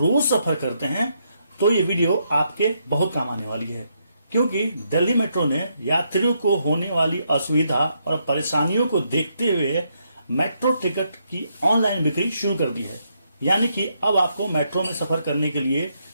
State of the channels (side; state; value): both; inverted; correlation -0.77